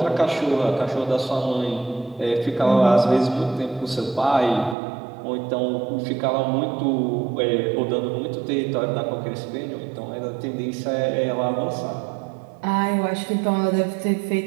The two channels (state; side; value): drops out; left; at 4.8 s